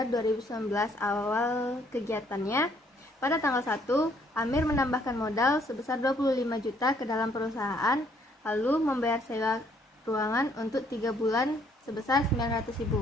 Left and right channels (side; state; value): both; normal; correlation 0.66